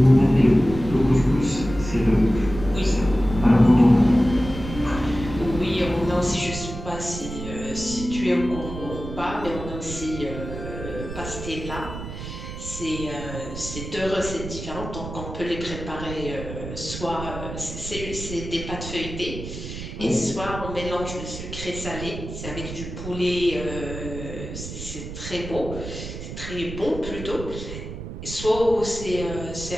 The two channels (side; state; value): right; noise; rumble, 9 dB below the sound